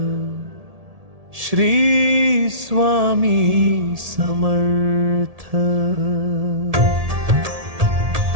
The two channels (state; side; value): late; left; 1.7 ms